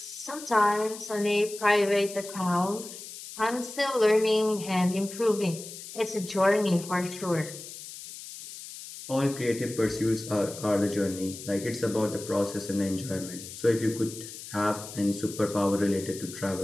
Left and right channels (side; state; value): left; noise; hiss, 12 dB below the sound